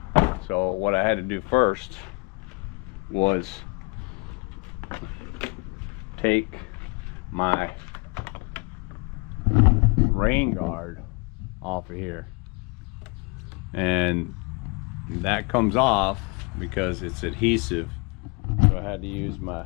So what I had to do first was take my rain guard off of here, and that comes off because it's adhesive. So I had to use my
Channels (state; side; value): quieter; right; 30.8 dB